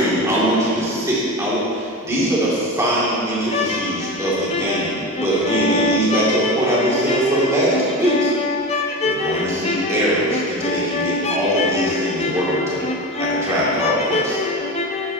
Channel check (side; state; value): both; normal; correlation 0.26